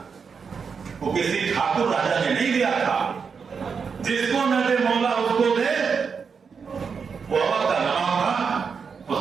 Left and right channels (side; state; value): left; quieter; 5.9 dB